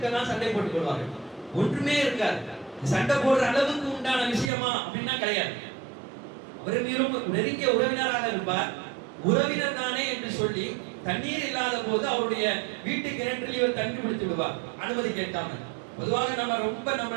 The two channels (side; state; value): left; drops out; at 4.5 s